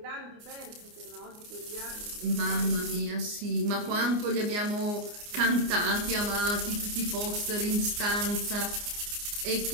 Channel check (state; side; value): late; left; 29 ms